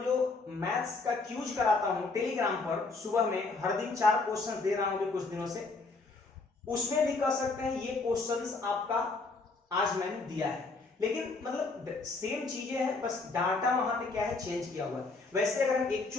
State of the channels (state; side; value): quieter; right; 3.7 dB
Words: जो मैथ्स का क्यूज कराता हूं टेलीग्राम पर, सुबह में हर दिन 4 क्वेश्चन दे रहा हूं कुछ दिनों से, उसमें भी कह सकते हैं ये क्वेश्चंस आपका आज मैंने दिया है, लेकिन मतलब सेम चीजें हैं, बस डाटा वहां पे क्या है चेंज किया हुआ है। वैसे अगर हम